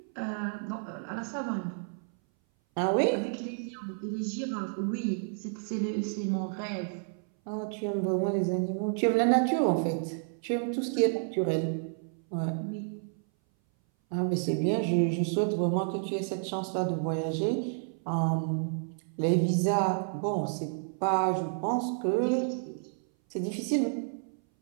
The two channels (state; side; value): silent; left; 58 dB below the other